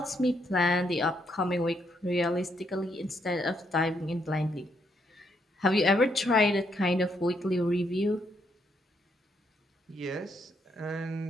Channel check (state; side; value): normal; both; correlation 0.75